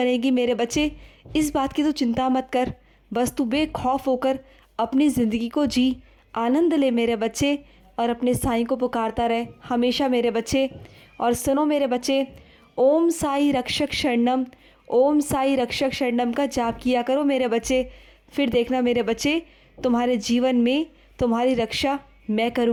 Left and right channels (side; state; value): both; identical; correlation 1.00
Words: मेरे बच्चे। इस बात की तो चिंता मत कर। बस तू बेखौफ होकर अपनी ज़िंदगी को जी, आनंद ले मेरे बच्चे, और अपने साईं को पुकारता रहे हमेशा मेरे बच्चे। और सुनो मेरे बच्चे, ओम साई रक्षक शरणम, ओम साई रक्षक शरणम का जाप किया करो मेरे बच्चे। फिर देखना मेरे बच्चे, तुम्हारे जीवन में तुम्हारी रक्षा मैं